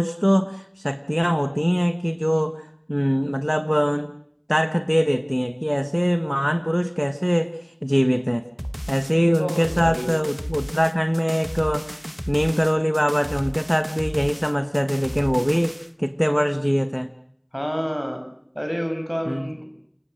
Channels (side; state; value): both; identical; correlation 1.00